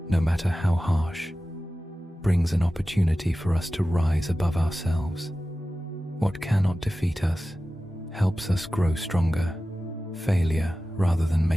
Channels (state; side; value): normal; both; correlation 0.95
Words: no matter how harsh, brings an opportunity for us to rise above ourselves. What cannot defeat us helps us grow stronger. Failure, rather than